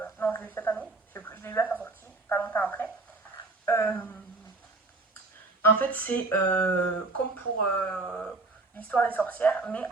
Non, je l'ai eu cette année. Je l'ai eu à sa sortie, pas longtemps après. En fait, c'est comme pour l'histoire des sorcières, mais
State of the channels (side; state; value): left; quieter; 3.3 dB